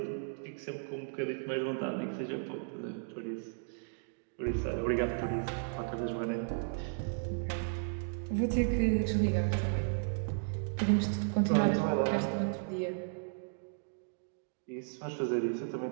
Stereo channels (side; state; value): left; silent; digital silence